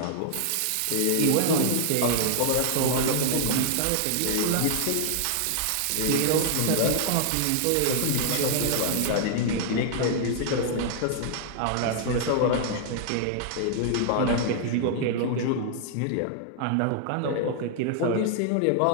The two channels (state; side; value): different; both; correlation -0.01